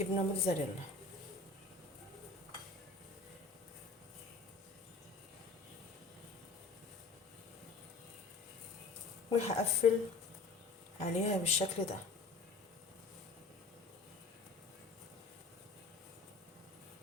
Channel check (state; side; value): quieter; right; 3.8 dB